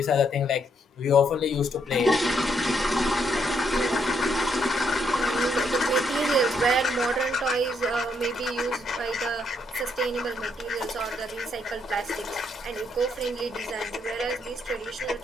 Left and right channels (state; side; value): normal; both; correlation 0.74